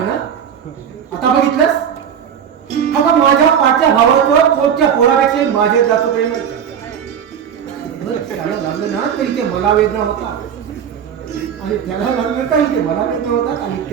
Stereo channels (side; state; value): left; quieter; 8.3 dB